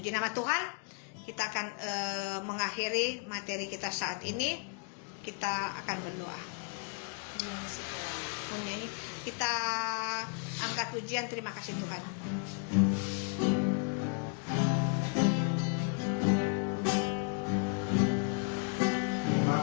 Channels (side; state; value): right; quieter; 39.7 dB